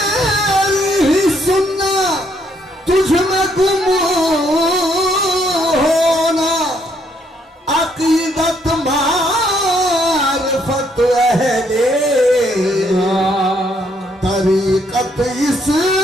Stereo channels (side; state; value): both; normal; correlation 0.70